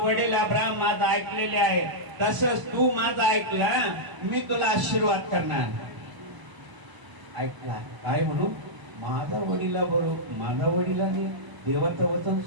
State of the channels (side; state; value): left; late; 1.0 ms